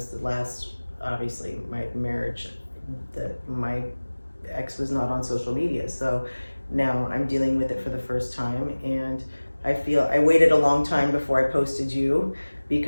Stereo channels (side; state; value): both; inverted; correlation -1.00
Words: the last, obviously, my marriage, my ex was not on social media. So now I'm dealing with it for the first time, and I feel I waited a long time before I posted you